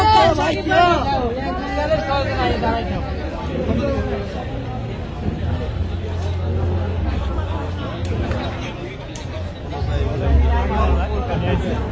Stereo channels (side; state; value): both; identical; correlation 1.00